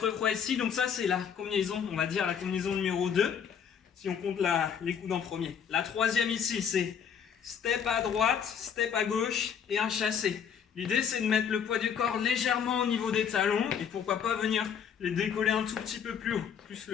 fois ici. Donc ça, c'est la combinaison, on va dire la combinaison numéro 2. Si on compte les coudes en premier. La troisième ici, c'est step à droite, step à gauche et un chassé. L'idée, c'est de mettre le poids du corps légèrement au niveau des talons et pourquoi pas venir les décoller un tout petit peu plus haut, plus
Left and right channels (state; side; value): quieter; right; 7.7 dB